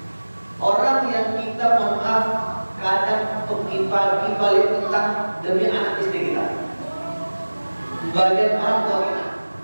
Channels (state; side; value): inverted; both; correlation -1.00